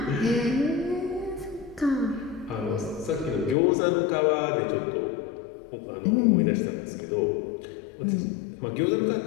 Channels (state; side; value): drops out; right; at 3.6 s